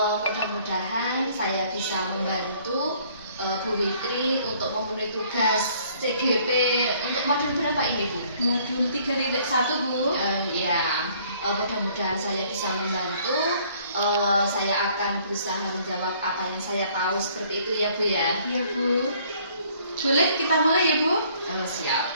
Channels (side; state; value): both; inverted; correlation -0.60